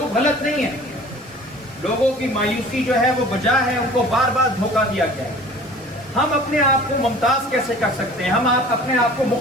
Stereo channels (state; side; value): normal; both; correlation 0.45